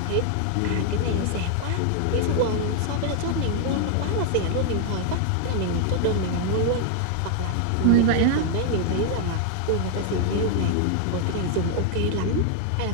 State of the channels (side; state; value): both; different; correlation 0.00